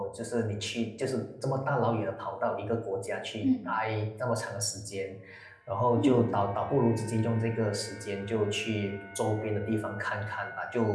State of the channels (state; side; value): identical; both; correlation 1.00